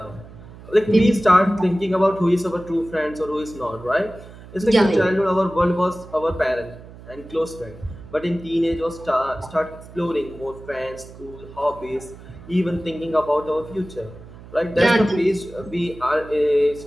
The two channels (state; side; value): noise; right; hum, 18 dB below the sound